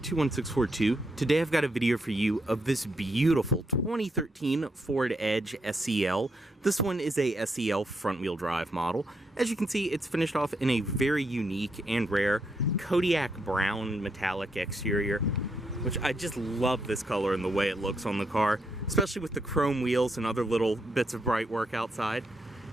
Today I've got a video for you of this beautiful 2013 Ford Edge SEL. This one is a SEL front-wheel drive model. As you can see, it's finished off in a very unique and rare Kodiak brown metallic exterior, which I just love this color and the way it looks on the car, especially with the chrome wheels and other little bits of bright work outside.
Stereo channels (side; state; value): both; normal; correlation 0.79